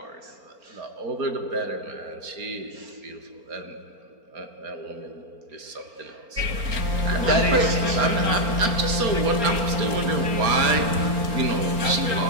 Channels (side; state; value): left; late; 4.4 ms